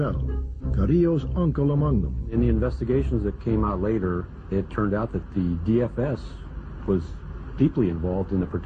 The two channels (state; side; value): identical; both; correlation 1.00